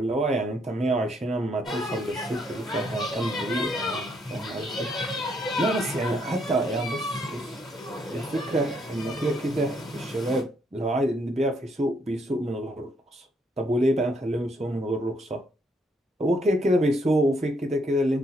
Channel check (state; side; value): normal; both; correlation 0.72